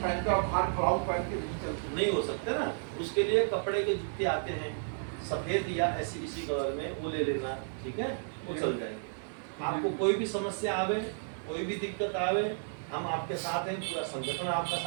पहनते और बाहर खड़ाऊ पहन के नहीं चलते, नहीं हो सकते ना। उसके लिए कपड़े के जूते आते हैं, सफेद या ऐसी इसी कलर में, वो ले लेना, ठीक है, वो चल जाएंगे। आपको कोई भी समस्या आवे, कोई भी दिक्कत आवे, हम आपके साथ हैं, पूरा संगठन आपका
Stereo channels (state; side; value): silent; left; 56 dB below the other